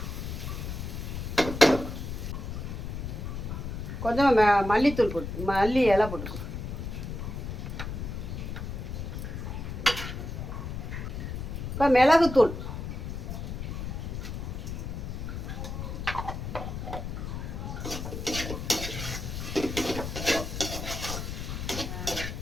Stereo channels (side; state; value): left; noise; rumble, 5 dB below the sound